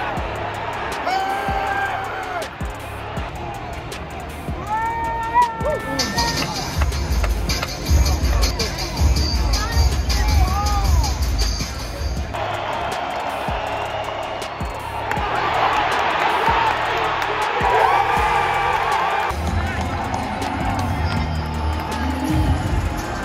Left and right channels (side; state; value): both; identical; correlation 1.00